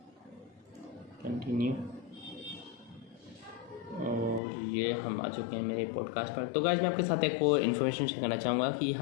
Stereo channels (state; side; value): drops out; right; at 4.4 s